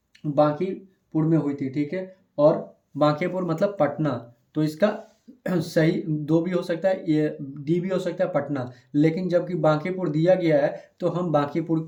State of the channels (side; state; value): both; identical; correlation 1.00